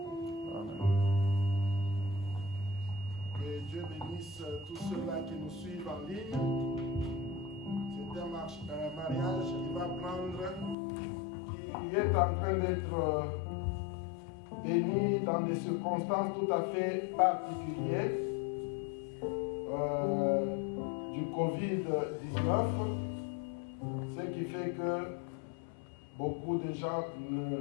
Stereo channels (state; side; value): drops out; right; at 10.8 s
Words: Amen. Que Dieu bénisse tous ceux-là qui nous suivent en ligne. C'est un mariage qui va prendre, qui est en train d'être béni dans des circonstances tout à fait particulières du Covid-19, ce qui fait que beaucoup de gens ne